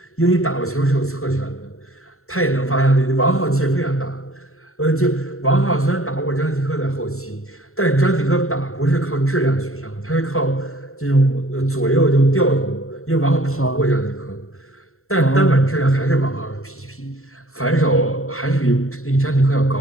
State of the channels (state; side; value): late; right; 0.63 ms